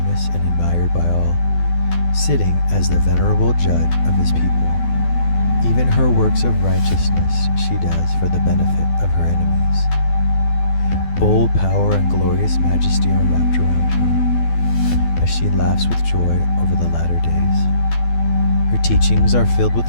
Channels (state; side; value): late; right; 12 ms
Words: and admired by all, sitting as the venerable judge of his people. Even her works of righteousness she does for the benefit of her enemies. Bold power and glorious majesty are wrapped around her, as she laughs with joy over the latter days. Her teachings are filled